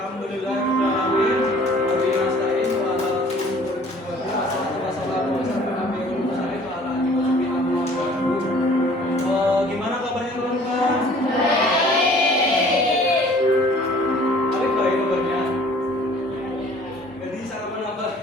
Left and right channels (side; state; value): both; normal; correlation 0.53